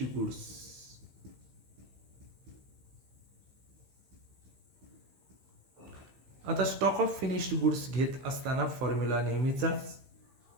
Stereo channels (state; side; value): late; left; 15 ms